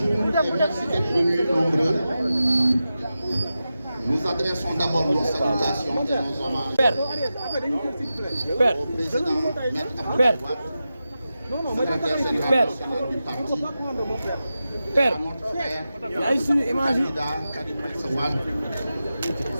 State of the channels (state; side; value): inverted; both; correlation -0.92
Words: et merci d'être venus nombreux. Nous adressons d'abord nos salutations et nos hommages au président Maître Abdoulaye Wade, secrétaire général national du parti, à notre frère, candidat Karim Meïssa Wade.